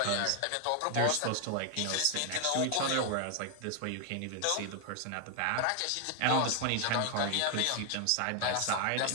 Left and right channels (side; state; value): both; different; correlation 0.00